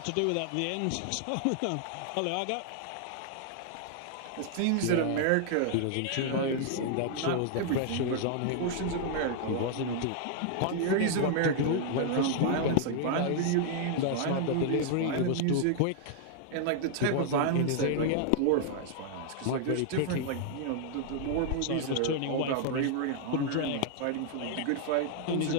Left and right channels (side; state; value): both; different; correlation -0.01